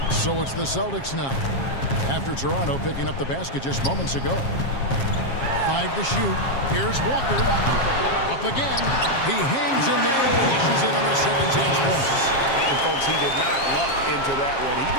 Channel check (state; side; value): late; right; 7.4 ms